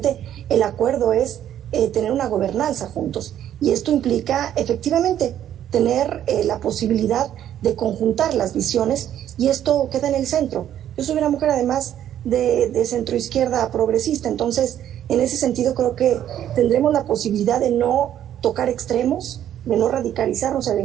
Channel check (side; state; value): left; quieter; 10.9 dB